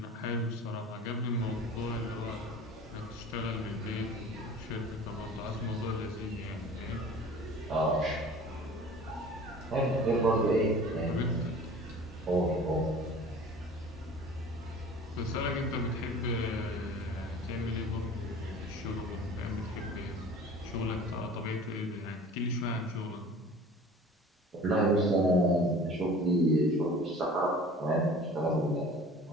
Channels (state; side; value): normal; both; correlation 0.43